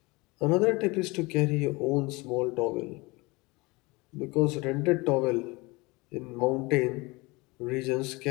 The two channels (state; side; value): quieter; right; 24.7 dB